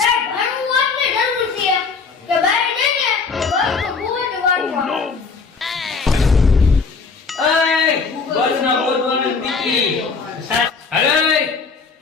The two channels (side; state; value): right; quieter; 4.9 dB